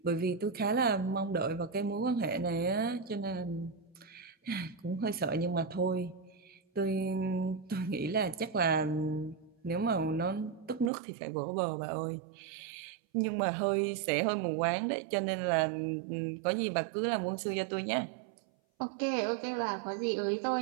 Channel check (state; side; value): drops out; left; at 10.9 s